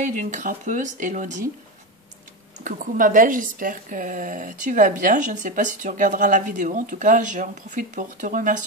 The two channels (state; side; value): normal; both; correlation 0.17